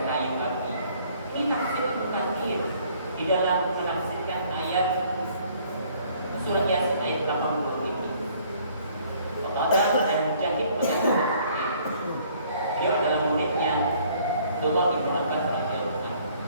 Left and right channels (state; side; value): inverted; both; correlation -0.60